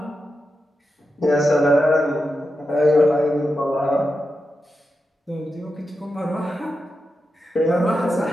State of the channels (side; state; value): both; normal; correlation 0.89